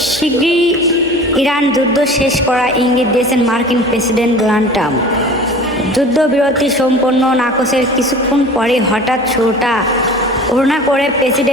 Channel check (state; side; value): normal; both; correlation 0.41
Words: শীঘ্রই ইরান যুদ্ধ শেষ করার ইঙ্গিত দিয়েছেন মার্কিন প্রেসিডেন্ট ডোনাল্ড ট্রাম্প। যুদ্ধবিরতি সম্পন্ন নাকচের কিছুক্ষণ পরে হঠাৎ শুরুটা ঘোষণা করে